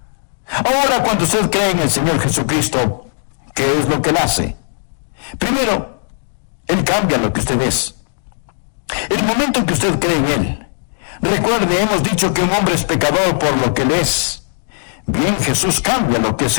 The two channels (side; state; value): right; silent; digital silence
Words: Ahora, cuando usted cree en el Señor Jesucristo, ¿qué es lo que Él hace? Primero, Él cambia lo que usted es. El momento en que usted cree en Él, recuerde, hemos dicho que un hombre es pecador por lo que Él es. Bien, Jesús cambia lo que